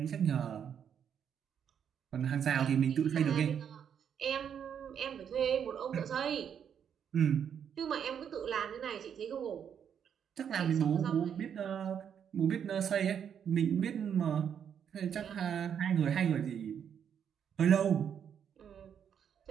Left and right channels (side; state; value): left; quieter; 8.2 dB